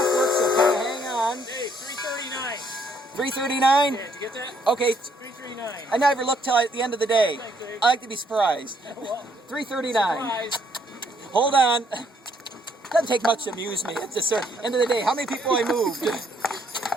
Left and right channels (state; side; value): normal; both; correlation 0.69